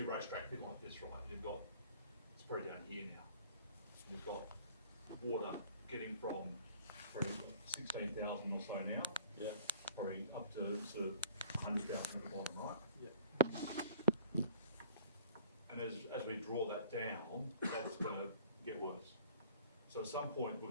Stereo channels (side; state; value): both; inverted; correlation -0.49